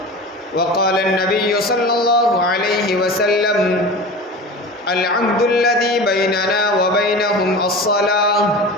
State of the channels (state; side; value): normal; both; correlation 0.33